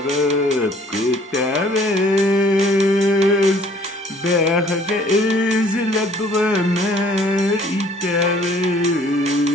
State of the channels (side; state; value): both; normal; correlation 0.57